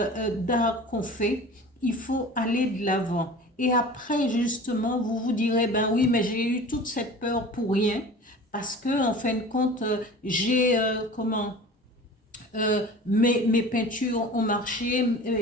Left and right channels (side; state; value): both; normal; correlation 0.39